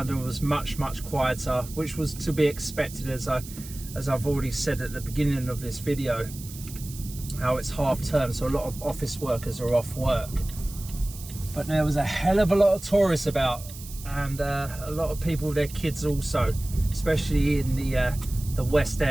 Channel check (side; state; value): right; noise; hiss, 15 dB below the sound